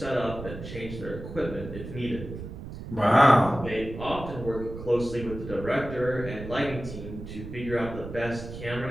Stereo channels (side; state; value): right; noise; rumble, 10 dB below the sound